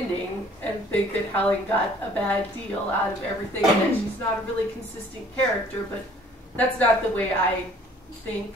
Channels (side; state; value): both; normal; correlation 0.55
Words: and think that Helen got a bad deal out of everything and that she's not a really consistent character, but that's not the way I think,